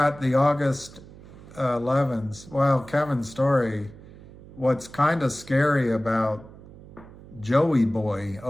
the August 11s. Well, Kevin's story, what's kind of scary about Joey Boy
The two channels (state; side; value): noise; right; hum, 19 dB below the sound